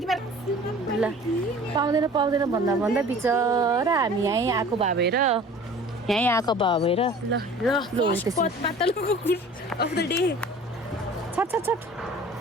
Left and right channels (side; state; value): both; normal; correlation 0.45